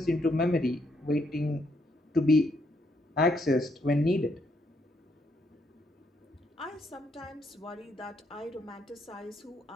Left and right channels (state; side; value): normal; both; correlation 0.74